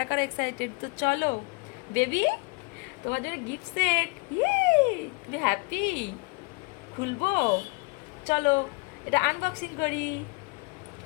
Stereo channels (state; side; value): quieter; right; 28.4 dB